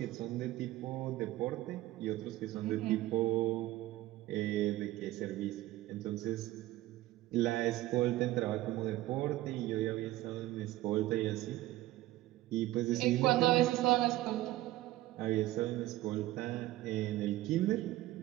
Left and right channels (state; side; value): quieter; left; 16.4 dB